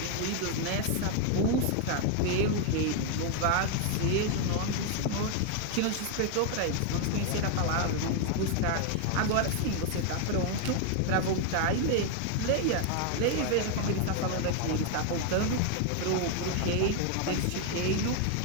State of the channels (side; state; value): both; different; correlation 0.01